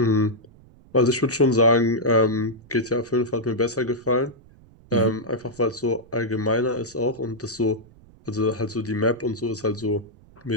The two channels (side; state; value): right; noise; rumble, 25 dB below the sound